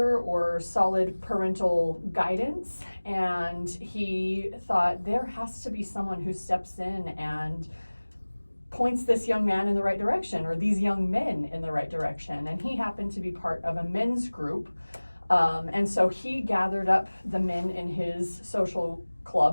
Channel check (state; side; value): inverted; both; correlation -1.00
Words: or solid parental guidance. And he thought there has to be someone who steps in and points this young man in the right direction, or these young men in the right direction. And he happened to be part of a men's group. And so he gathered up the men in his social